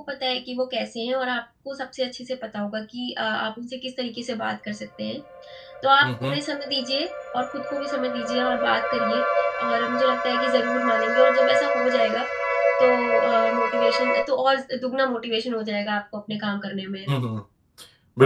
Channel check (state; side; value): identical; both; correlation 1.00